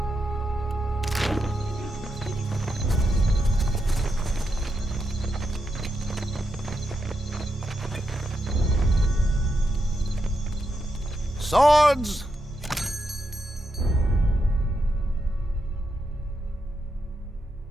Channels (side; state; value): both; normal; correlation 0.84